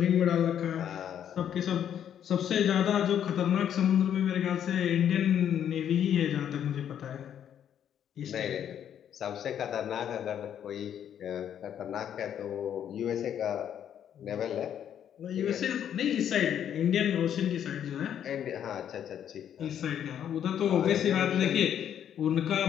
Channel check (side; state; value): right; quieter; 9.5 dB